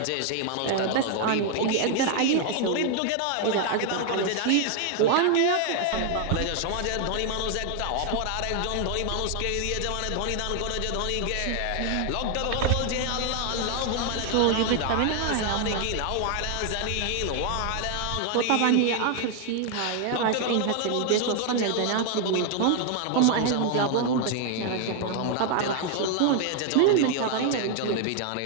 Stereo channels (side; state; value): both; different; correlation 0.00